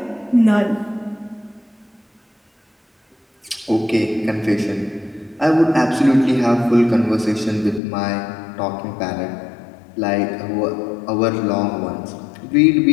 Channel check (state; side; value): drops out; right; at 7.8 s